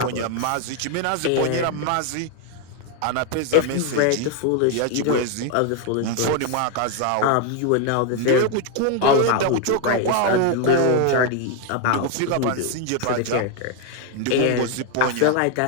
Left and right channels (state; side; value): different; both; correlation 0.01